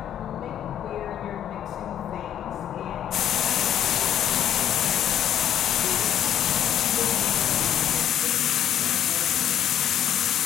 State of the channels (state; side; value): quieter; right; 10.3 dB